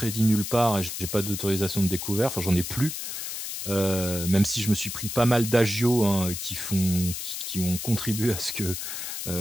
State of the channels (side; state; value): left; noise; hiss, 6 dB below the sound